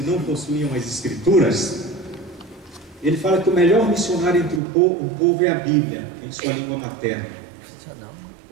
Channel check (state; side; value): drops out; left; at 4.6 s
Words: não possuíam as Escrituras, ele fala que o melhor missionário entre o povo é a Bíblia, em sua língua materna,